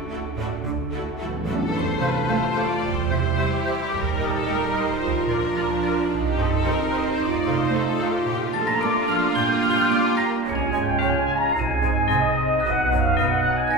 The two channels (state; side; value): normal; both; correlation 0.37